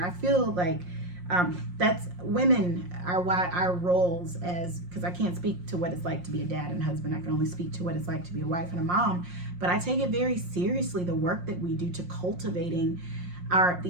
feel like that's women are why our roles as, because I can't speak to what it's like to be a dad and husband. I can only speak to what it's like to be a wife and a mom. But I take it very seriously, the work that we do to cultivating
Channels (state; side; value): late; left; 5.6 ms